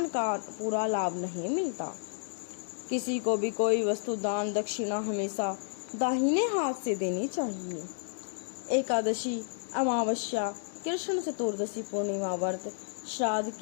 का पूरा लाभ नहीं मिलता। किसी को भी कोई वस्तु दान दक्षिणा हमेशा दाहिने हाथ से देनी चाहिए। एकादशी, अमावस्या, कृष्ण चतुर्दशी, पूर्णिमा व्रत, श्राद्ध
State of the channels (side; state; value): right; silent; digital silence